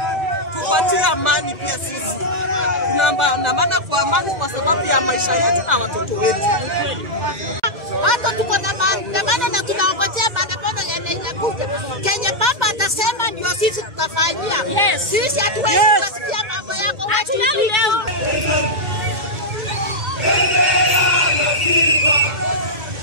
tupatie amani pia sisi. Tunaandamana kwa amani kwa sababu ya maisha yetu na watoto wetu. Hata tuko na maandamano na tunaongojea maandamano yanayokuja. Kenya baba atasema ndio sisi tutafanyia. Yes. Sisi hatuwezi kusikia mambo yako. Hatuna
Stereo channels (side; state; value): left; late; 2.0 ms